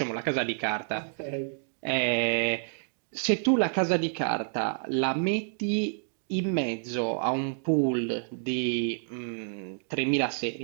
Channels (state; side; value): silent; left; digital silence